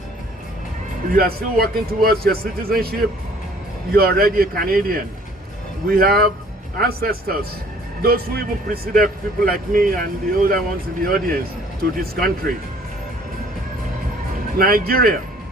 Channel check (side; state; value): both; normal; correlation 0.56